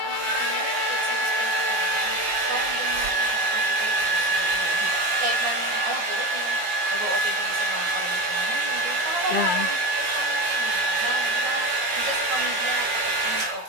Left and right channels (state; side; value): late; left; 15 ms